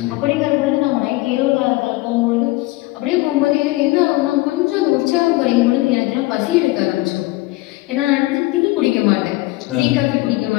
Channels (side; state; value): right; quieter; 20.1 dB